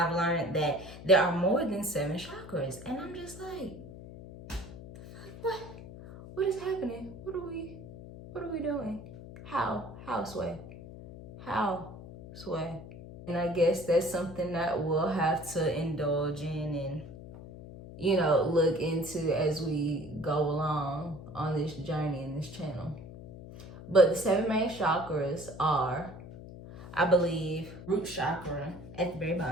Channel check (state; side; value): noise; left; hum, 14 dB below the sound